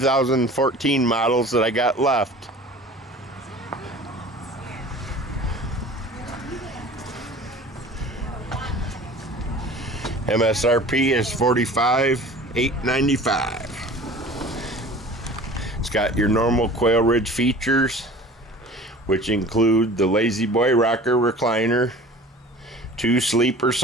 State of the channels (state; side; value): normal; both; correlation 0.43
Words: models that I got left. MSRP is $45,895. It's got your normal Quailridge features, which include the Lazy Boy rocker recliner, 2 sleeper